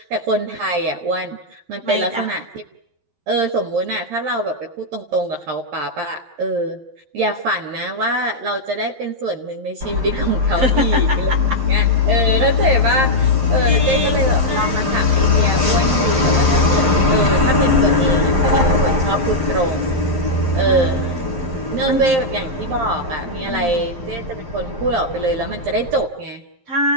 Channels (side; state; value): left; late; 11 ms